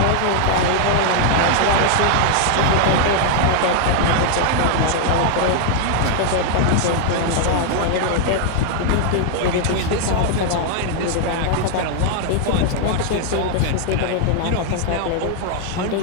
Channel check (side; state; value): both; different; correlation 0.00